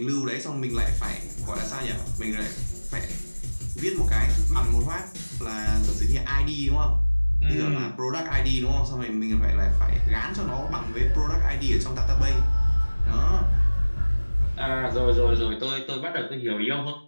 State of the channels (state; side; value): inverted; both; correlation -1.00